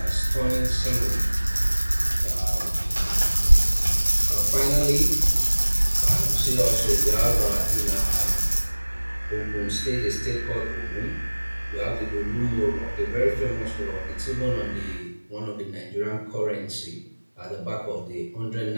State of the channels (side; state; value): both; inverted; correlation -1.00